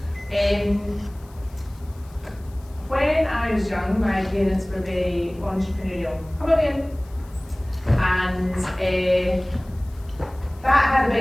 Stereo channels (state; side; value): noise; left; hiss, 28 dB below the sound